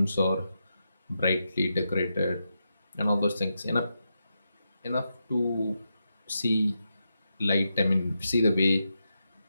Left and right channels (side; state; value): both; inverted; correlation -0.86